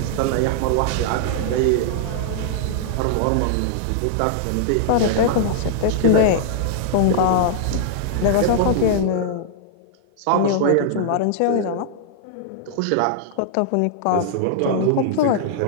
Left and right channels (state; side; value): different; both; correlation -0.01